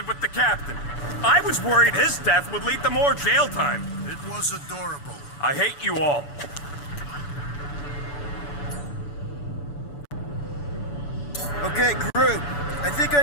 with the captain. I was worried his death would lead to more jail time. It was adorable. I hate you all. Okay, crew. I think I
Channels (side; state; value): right; late; 6.9 ms